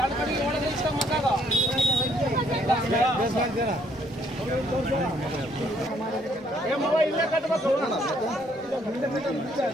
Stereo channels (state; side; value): normal; both; correlation 0.66